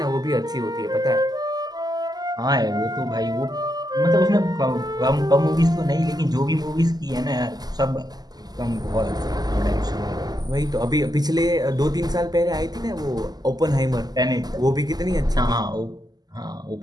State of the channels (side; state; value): left; late; 0.19 ms